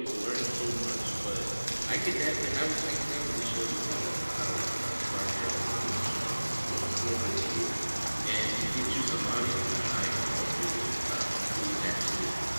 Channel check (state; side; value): inverted; both; correlation -1.00